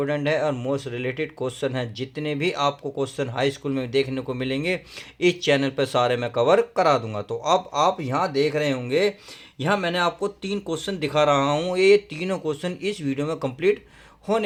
है और मोस्ट रिलेटेड क्वेश्चन है, जितने भी आपको क्वेश्चन हाई स्कूल में देखने को मिलेंगे इस चैनल पर सारे मैं कवर करा दूंगा। तो अब आप यहाँ देख रहे होंगे, यहाँ मैंने आपको 3 क्वेश्चन दिखा रहा हूँ। ये तीनों क्वेश्चन इस वीडियो में कंप्लीट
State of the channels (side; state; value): both; identical; correlation 1.00